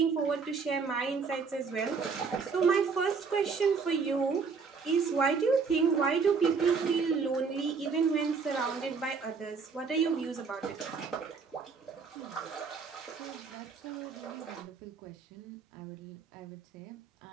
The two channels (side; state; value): left; quieter; 5.2 dB